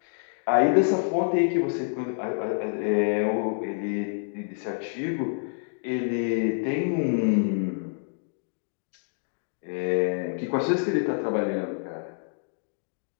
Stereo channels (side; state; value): right; silent; digital silence